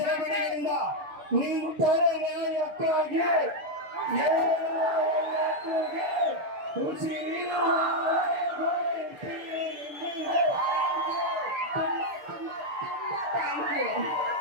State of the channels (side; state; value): left; late; 6.9 ms